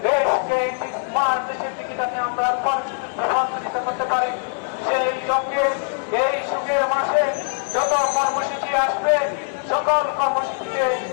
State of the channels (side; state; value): right; silent; digital silence